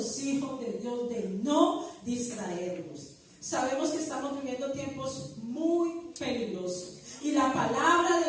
hijos de Dios, de no distraernos. Sabemos que estamos viviendo tiempos muy peligrosos. Y la palabra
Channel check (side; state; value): both; identical; correlation 1.00